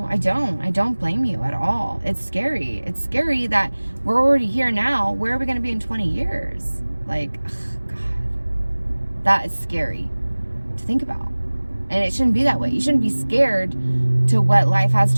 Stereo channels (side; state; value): both; inverted; correlation -1.00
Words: I don't blame you at all. It's scary. It's scary that we're already here now. Where are we going to be in 20 years? Like, ugh, God, that is scary to think about. And it shouldn't be that way. You shouldn't be scared to what life has